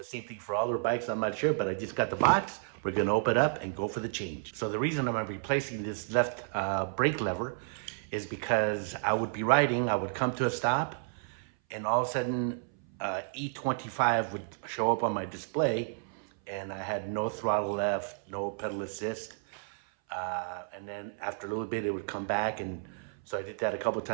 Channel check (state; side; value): silent; left; 57 dB below the other